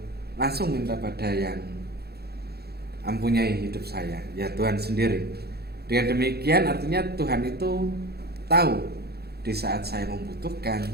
langsung minta pada yang mempunyai hidup saya, ya Tuhan sendiri. Dengan demikian artinya Tuhan itu tahu di saat saya membutuhkan,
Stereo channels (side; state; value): left; late; 0.46 ms